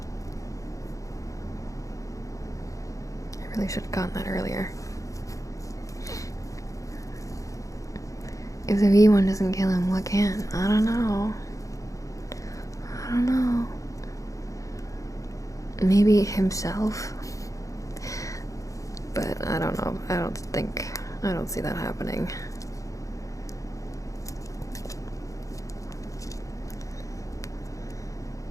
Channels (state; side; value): late; right; 0.16 ms